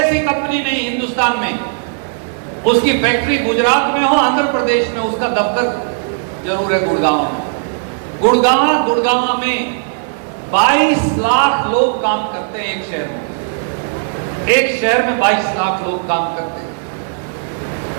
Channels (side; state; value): left; silent; digital silence